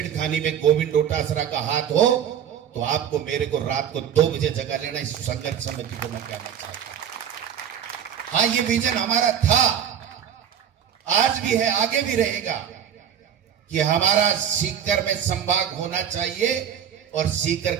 में गोविंद डोटासरा का हाथ हो तो आपको मेरे को रात को 2 बजे जगा लेना। इस संघर्ष समिति को मैं कहना चाहता हूं, हाँ ये विजन हमारा था, आज भी है, आगे भी रहेगा कि हमारा सीकर में संभाग होना चाहिए और सीकर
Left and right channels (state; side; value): quieter; left; 9.0 dB